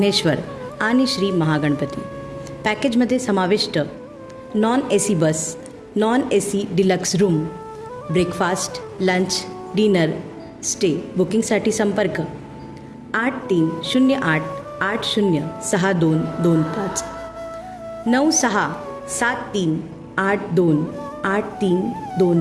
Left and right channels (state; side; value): identical; both; correlation 1.00